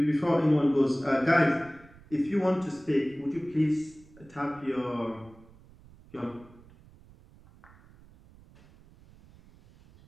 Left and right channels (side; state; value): right; noise; rumble, 25 dB below the sound